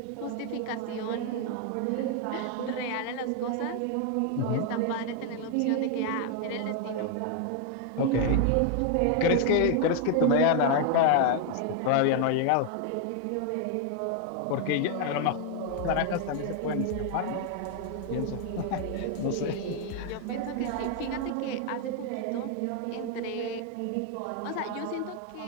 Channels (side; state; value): both; different; correlation 0.00